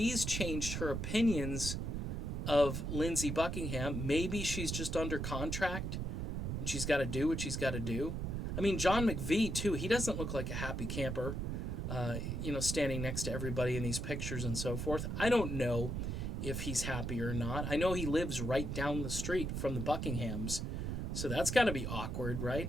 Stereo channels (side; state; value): right; noise; rumble, 2 dB below the sound